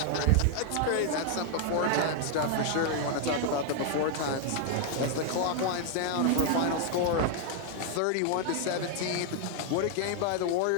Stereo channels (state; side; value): different; both; correlation 0.00